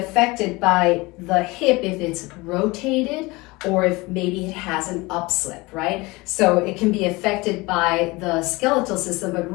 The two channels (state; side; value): quieter; right; 23.2 dB